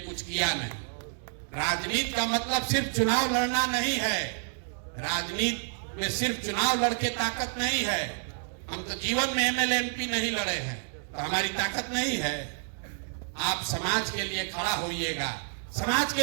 किया नहीं। राजनीति का मतलब सिर्फ चुनाव लड़ना नहीं है। राजनीति में सिर्फ चुनाव लड़के ताकत नहीं है। हम तो जीवन में एमएलए एमपी नहीं लड़े हैं, तो हमारी ताकत नहीं है। आप समाज के लिए खड़ा होइएगा, समाज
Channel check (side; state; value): left; silent; digital silence